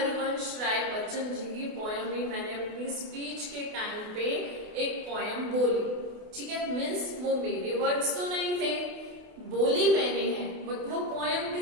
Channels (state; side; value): late; left; 28 ms